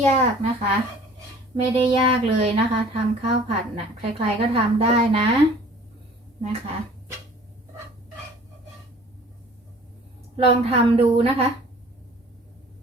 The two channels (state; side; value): normal; both; correlation 0.49